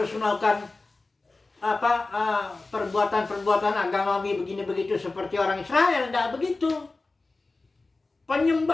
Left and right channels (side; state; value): right; quieter; 3.4 dB